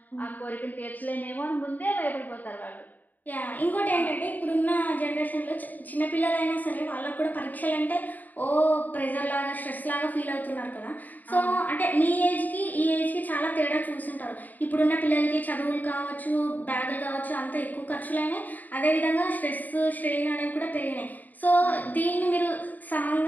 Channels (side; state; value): right; late; 0.083 ms